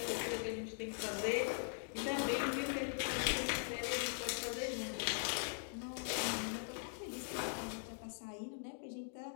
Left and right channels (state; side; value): silent; right; digital silence